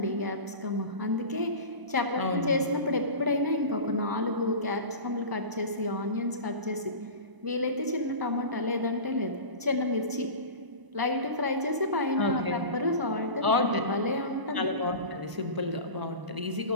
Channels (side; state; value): left; late; 1.0 ms